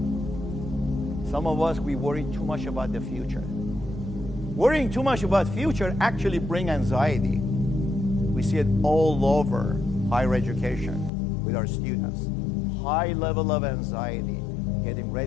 Some of us, we worry too much about the future. Worrying too much about future actually brings anxiety. We see it all over higher education with our students. High level of anxiety, getting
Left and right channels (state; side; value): drops out; right; at 11.1 s